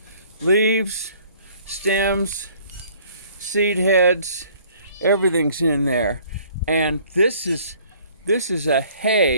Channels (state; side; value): inverted; both; correlation -0.56